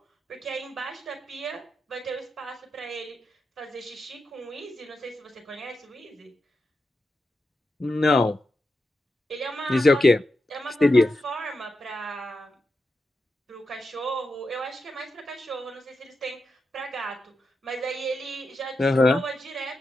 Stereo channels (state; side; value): normal; both; correlation 0.88